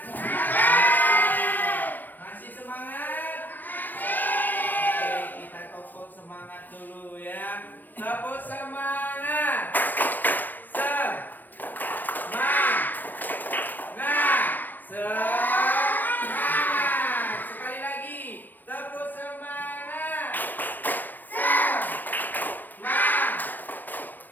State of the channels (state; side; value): late; right; 0.086 ms